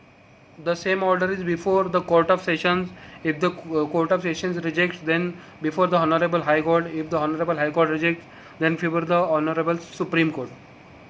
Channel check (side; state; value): both; identical; correlation 1.00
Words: the same order is before the Court of Sessions. If the Court of Sessions rejects, then before the Honorable High Court. If the Honorable High Court rejects, then before the Honorable Supreme Court.